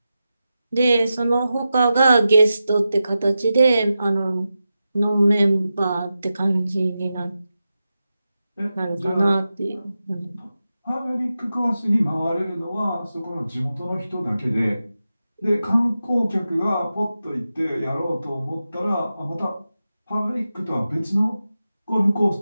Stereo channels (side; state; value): both; inverted; correlation -0.92